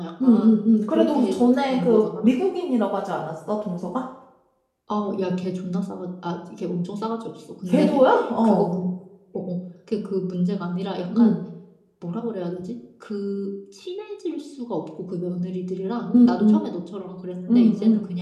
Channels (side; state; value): both; identical; correlation 1.00